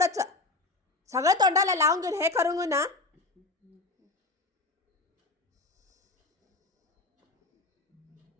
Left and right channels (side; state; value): right; quieter; 3.3 dB